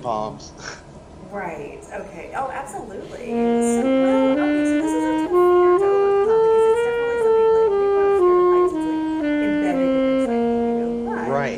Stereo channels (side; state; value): both; identical; correlation 1.00